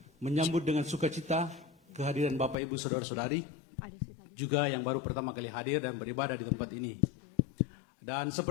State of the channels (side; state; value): right; drops out; at 2.6 s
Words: menyambut dengan sukacita kehadiran Bapak Ibu Saudara-saudari juga yang baru pertama kali hadir dan beribadah di tempat ini. Dan